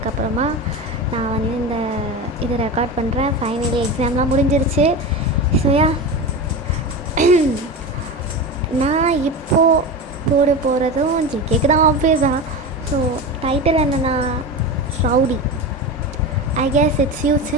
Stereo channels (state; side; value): normal; both; correlation 0.24